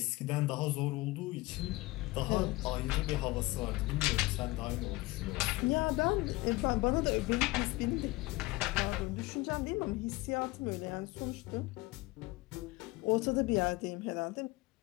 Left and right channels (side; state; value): right; quieter; 21.1 dB